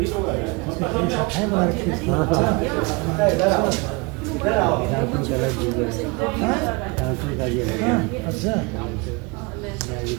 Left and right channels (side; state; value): left; quieter; 28.3 dB